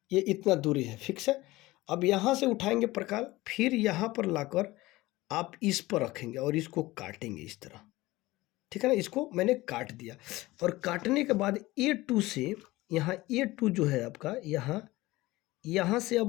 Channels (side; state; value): right; quieter; 19.1 dB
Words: ये इतना दूरी है, फिक्स है। अब यहाँ से उठाएंगे प्रकाल, फिर यहाँ पर लाकर आप इस पर रखेंगे और इसको काटेंगे इस तरह, ठीक है ना। इसको मैंने काट दिया, और काटने के बाद A2 से, यहाँ A2 जो है आपका, यहाँ से